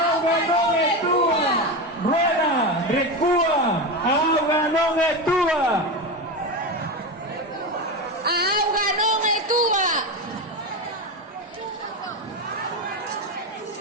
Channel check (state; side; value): normal; both; correlation 0.18